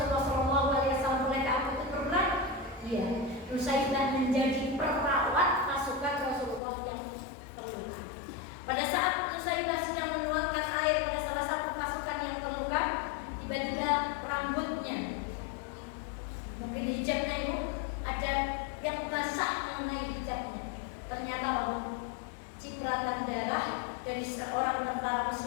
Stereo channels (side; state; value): right; drops out; at 6.6 s